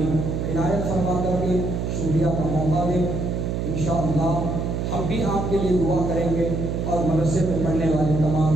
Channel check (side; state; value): right; noise; hum, 2 dB below the sound